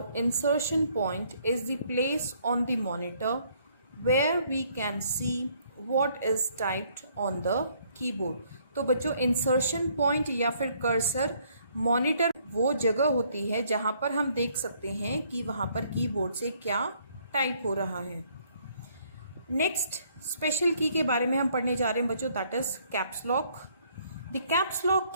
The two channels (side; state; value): both; inverted; correlation -0.65